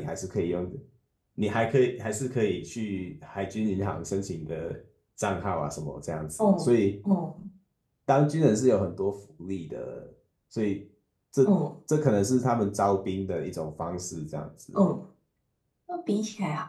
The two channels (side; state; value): both; identical; correlation 1.00